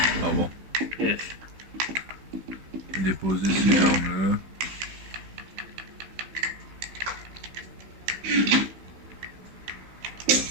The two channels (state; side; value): late; left; 15 ms